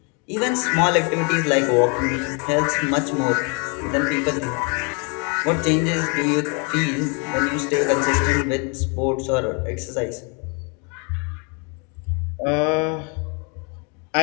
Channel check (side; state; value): right; quieter; 35.0 dB